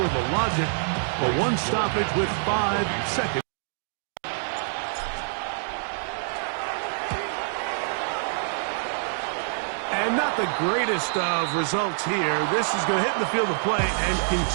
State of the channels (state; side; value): silent; left; digital silence